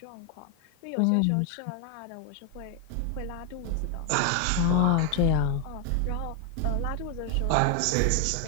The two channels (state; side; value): different; both; correlation 0.00